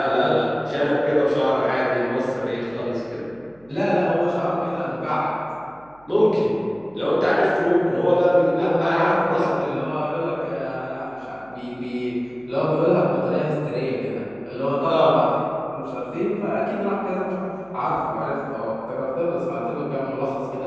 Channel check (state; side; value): noise; right; hum, 30 dB below the sound